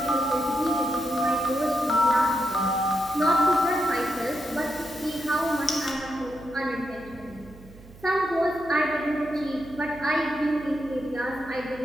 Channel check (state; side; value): noise; right; hum, 21 dB below the sound